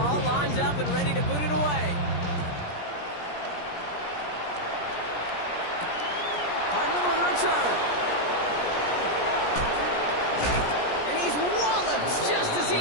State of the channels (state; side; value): late; right; 17 ms